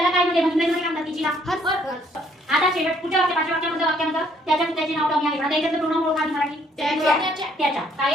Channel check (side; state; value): both; normal; correlation 0.65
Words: काय म्हणते? इंग्रजीमध्ये काय म्हणतात तिचीला? हर. आता शेवट पुढच्या पाचव्या वाक्यामध्ये त्याचे नाव कमी आहे. आता याच्यातलं प्रोनाउन ओळखा आधी मराठी. त्याच्या. काय